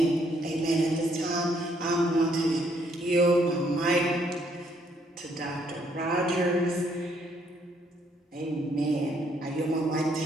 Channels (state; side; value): normal; both; correlation 0.69